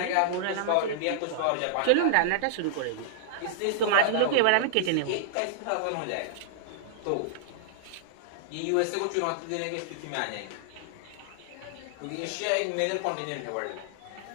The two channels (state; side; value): different; both; correlation -0.01